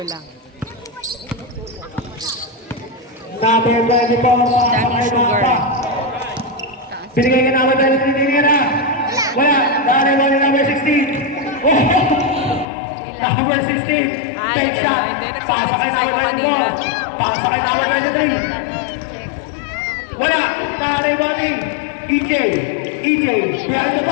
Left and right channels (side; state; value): right; drops out; at 12.7 s